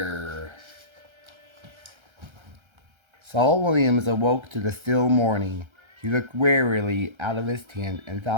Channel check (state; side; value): late; left; 1.3 ms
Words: Saul Williams awoke to the still morning. He looked wearily out of his tent and